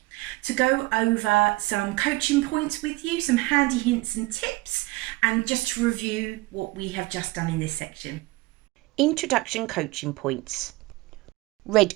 to go over some coaching points with you, some handy hints and tips, and just to review what we have just done in this section. Introduction coaching points. Red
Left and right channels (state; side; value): quieter; left; 21.3 dB